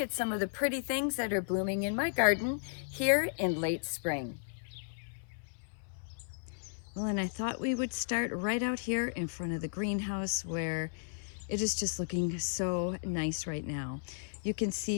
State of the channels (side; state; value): right; silent; 55 dB below the other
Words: at some of the pretty things that are blooming in my garden here in late spring. Well, and I thought we would start right out here in front of the greenhouse where it is just looking so nice right now. You can